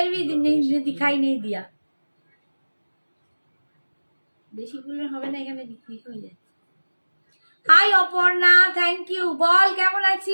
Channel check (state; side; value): inverted; both; correlation -1.00